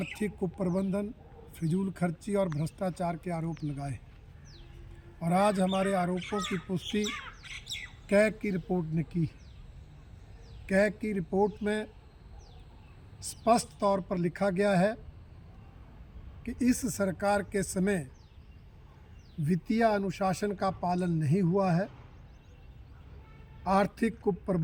कुप्रबंधन, फिजूल खर्ची और भ्रष्टाचार के आरोप लगाए और आज हमारे आरोपों की पुष्टि कैग की रिपोर्ट ने की। कैग की रिपोर्ट में स्पष्ट तौर पर लिखा गया है कि इस सरकार के समय वित्तीय अनुशासन का पालन नहीं हुआ है, आर्थिक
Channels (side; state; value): both; identical; correlation 1.00